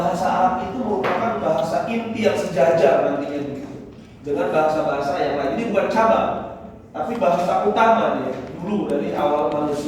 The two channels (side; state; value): both; identical; correlation 1.00